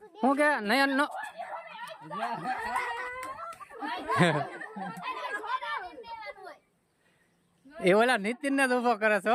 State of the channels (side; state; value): both; identical; correlation 1.00